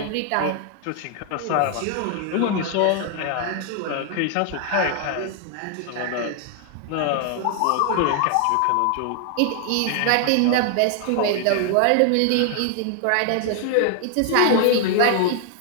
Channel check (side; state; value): both; different; correlation 0.00